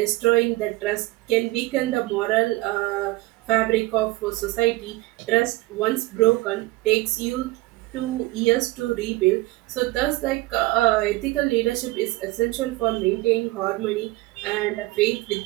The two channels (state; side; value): quieter; left; 20.2 dB